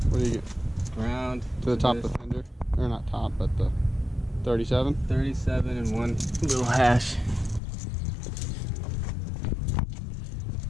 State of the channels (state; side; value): drops out; right; at 7.6 s